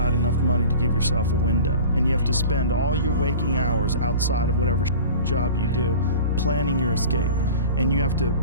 enough money to give yourself a window, and you have to spend all your waking hours outside of whatever job you do planning your escape. And you have to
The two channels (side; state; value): both; inverted; correlation -0.39